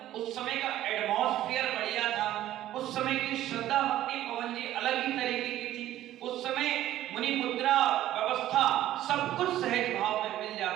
उस समय का एटमॉस्फेयर बढ़िया था, उस समय की श्रद्धा भक्ति पवन जी अलग ही तरीके की थी। उस समय मुनि मुद्रा व्यवस्था सब कुछ सहज भाव में मिल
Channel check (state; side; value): quieter; left; 13.5 dB